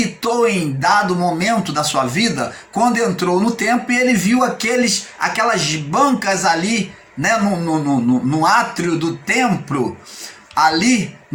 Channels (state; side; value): identical; both; correlation 1.00